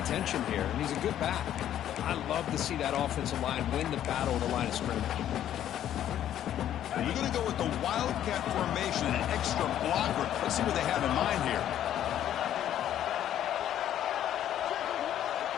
here, and he's a good back. I love to see that offensive line win the battle of the line of scrimmage. You're going to go with the Wildcat formation, an extra blocker. Let's see what they have in mind here.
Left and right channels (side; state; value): right; quieter; 11.2 dB